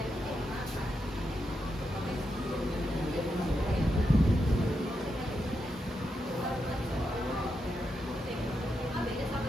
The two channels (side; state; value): both; normal; correlation 0.85